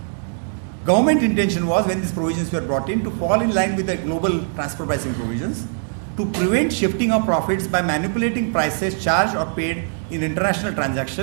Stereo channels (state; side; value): silent; left; digital silence